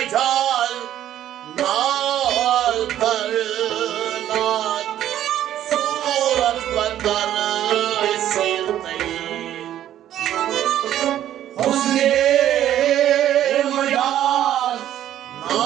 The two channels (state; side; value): quieter; left; 11.8 dB